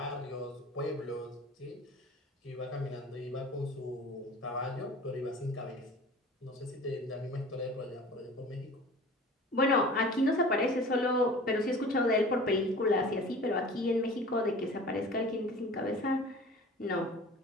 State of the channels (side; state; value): both; normal; correlation 0.41